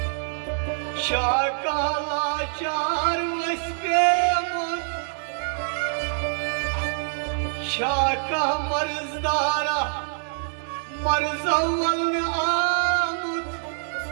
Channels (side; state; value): left; silent; digital silence